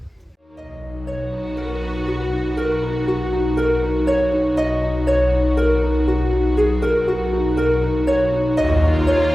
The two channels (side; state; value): both; normal; correlation 0.95